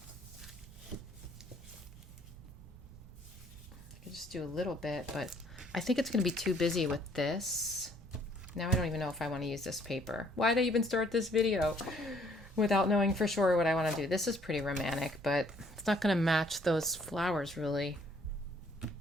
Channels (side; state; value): both; normal; correlation 0.63